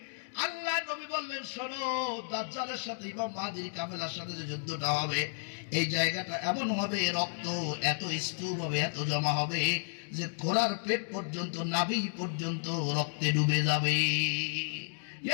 আল্লাহ নবী বললেন, শোনো, দাজ্জালের সাথে ইমাম মাহদীর কাফেলার সাথে যে যুদ্ধটা হবে এই জায়গাটা এমন হবে, রক্ত এত স্তূপ হবে, এত জমা হবে যে ঘোড়ার পেট পর্যন্ত, নাভি পর্যন্ত রক্তে ডুবে যাবে।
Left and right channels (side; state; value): right; silent; digital silence